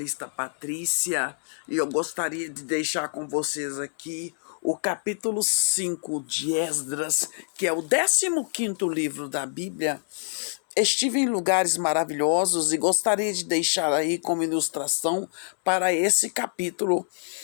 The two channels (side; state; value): right; silent; digital silence